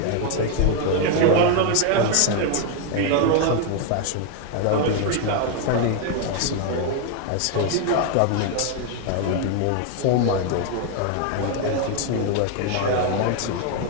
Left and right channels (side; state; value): both; different; correlation 0.01